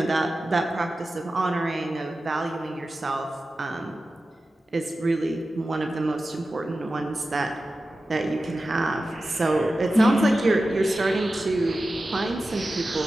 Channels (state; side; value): normal; both; correlation 0.94